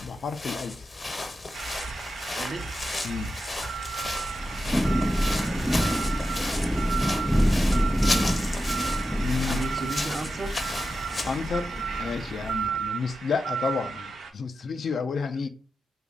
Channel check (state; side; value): normal; both; correlation 0.90